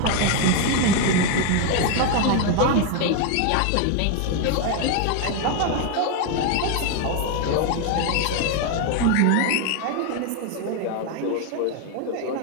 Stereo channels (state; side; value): different; both; correlation 0.01